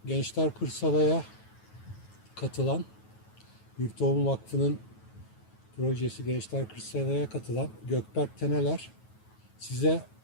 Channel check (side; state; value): right; late; 9.3 ms